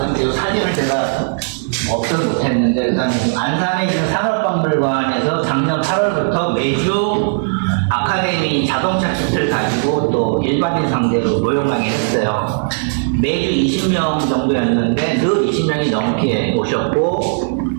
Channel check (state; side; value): silent; left; digital silence